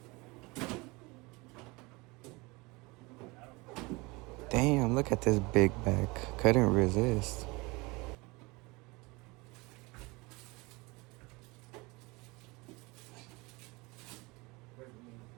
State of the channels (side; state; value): left; quieter; 24.8 dB